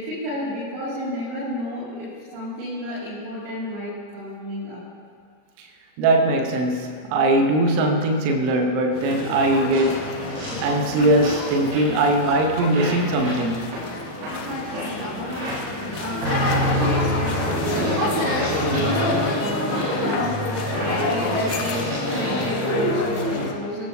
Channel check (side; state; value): left; late; 39 ms